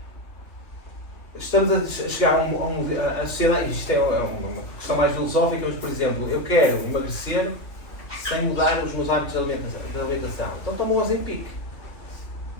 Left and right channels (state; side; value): late; right; 2.6 ms